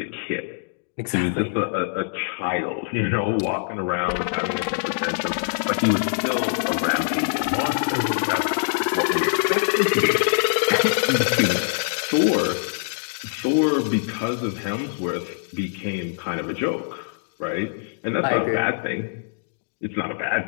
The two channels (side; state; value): right; silent; digital silence